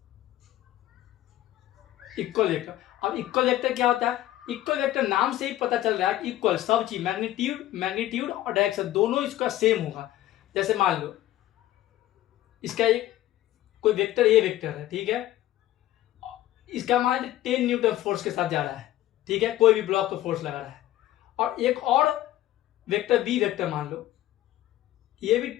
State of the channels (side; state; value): right; quieter; 14.5 dB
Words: Equal vector. अब इक्वल वेक्टर क्या होता है? इक्वल वेक्टर नाम से ही पता चल रहा है कि इक्वल, सब चीज, मैग्नीट्यूड और डायरेक्शन दोनों इसका सेम होगा। जैसे मान लो इसका एक कोई वेक्टर, ए वेक्टर है, ठीक है। इसका मान 10 न्यूटन फोर्स के साथ जा रहा है, ठीक है, कोई भी ब्लॉक को फोर्स लगा रहा है। और एक और वेक्टर, बी वेक्टर मान लो, ये भी